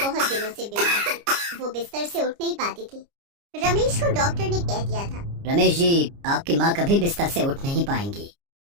दिनों से बीमार थी। वो बिस्तर से उठ नहीं पाती थी। रमेश को डॉक्टर ने कह दिया था, रमेश जी, आपकी माँ कभी बिस्तर से उठ नहीं पाएंगी।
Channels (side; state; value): left; late; 29 ms